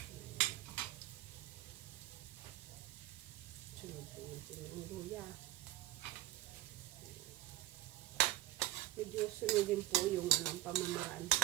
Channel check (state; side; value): quieter; left; 15.8 dB